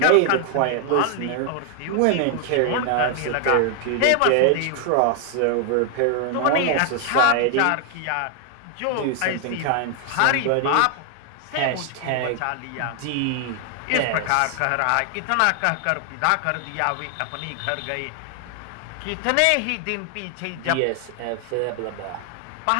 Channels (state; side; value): different; both; correlation 0.00